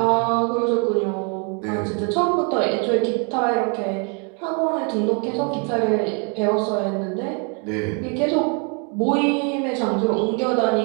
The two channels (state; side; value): quieter; left; 36.8 dB